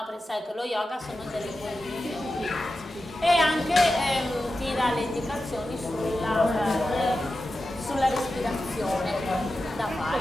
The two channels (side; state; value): both; normal; correlation 0.92